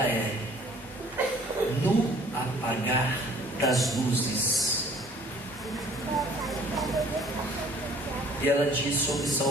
é No Apagar das Luzes. E ela diz sobre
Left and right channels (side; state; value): both; normal; correlation 0.55